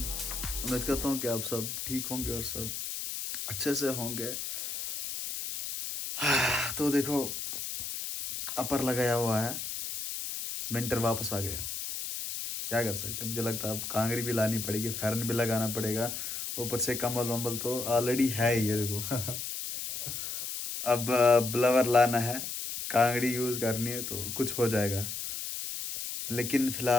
उम्मीद करता हूँ कि आप सब ठीक होंगे और सब अच्छे से होंगे। तो देखो, अपर लगाया हुआ है, विंटर वापस आ गया। क्या कर सकते हैं, मुझे लगता है अब कांगरी भी लानी पड़ेगी, फैरन भी लगाना पड़ेगा, ऊपर से कम्बल वम्बल तो ऑलरेडी है ही, ये देखो। अब ब्लवर लाना है, कांगड़ी यूज़ करनी है तो कुछ हो जाएगा। लेकिन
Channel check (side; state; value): left; noise; hiss, 5 dB below the sound